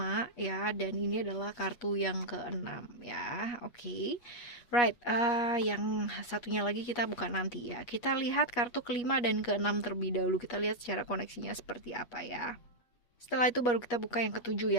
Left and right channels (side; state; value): right; late; 8.3 ms